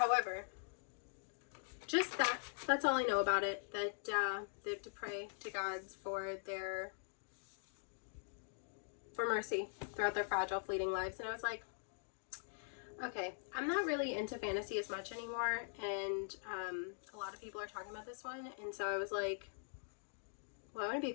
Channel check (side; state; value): right; silent; digital silence